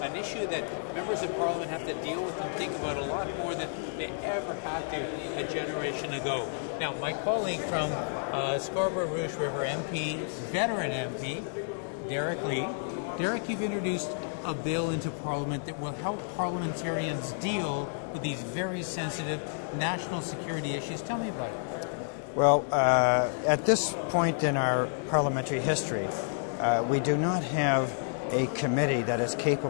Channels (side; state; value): right; silent; digital silence